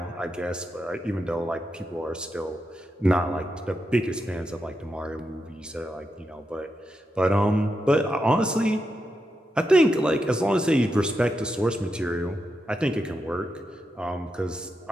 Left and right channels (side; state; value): both; normal; correlation 0.86